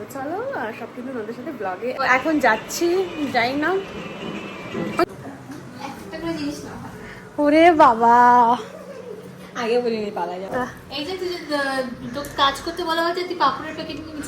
চলো সব কিন্তু ওদের সাথে ব্লগে এখন যাচ্ছি, যাই না। ওরে বাবা, আগে বলিনি পালা যাবে। এই যে তুই তো কাজ করতে বলা হয়েছে, তুই পাপড়ের প্যাকেট নিয়ে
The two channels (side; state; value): both; identical; correlation 1.00